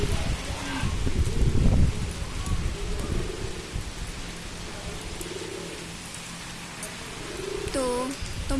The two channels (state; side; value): identical; both; correlation 1.00